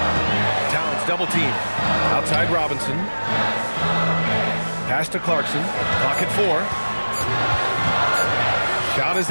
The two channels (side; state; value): both; inverted; correlation -1.00